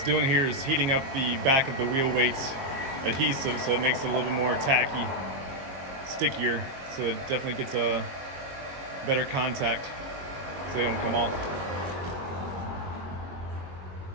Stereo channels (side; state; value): left; late; 22 ms